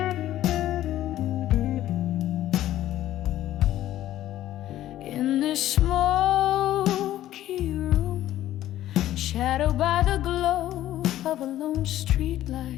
In this smoky room, shadowed by the glow of a lone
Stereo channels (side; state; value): right; quieter; 13.4 dB